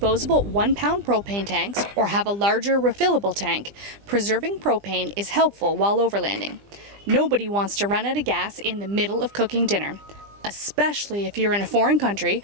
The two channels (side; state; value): left; late; 20 ms